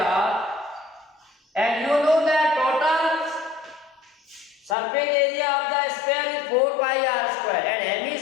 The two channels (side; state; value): right; drops out; at 4.8 s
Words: And you know that total surface area of the sphere is 4 pi r square and